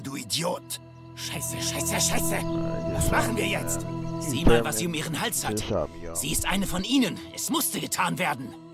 du Idiot. Scheiße, scheiße, scheiße! Was machen wir jetzt? Sieh mal, was sie um ihren Hals hat. Sie ist eine von ihnen. Es musste getan werden.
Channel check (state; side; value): identical; both; correlation 1.00